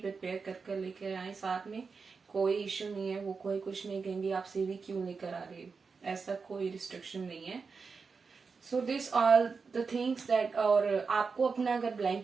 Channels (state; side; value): quieter; left; 5.0 dB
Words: कर लेकर आए साथ में, कोई इश्यू नहीं है। वो कोई कुछ नहीं कहेंगे आप सीवी क्यों लेकर आ रहे हो, ऐसा कोई रिस्ट्रिक्शन नहीं है। So this all the things that. और आपको अपना अगर